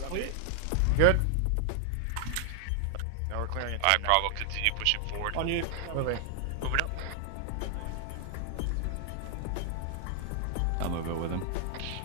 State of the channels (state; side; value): different; both; correlation 0.00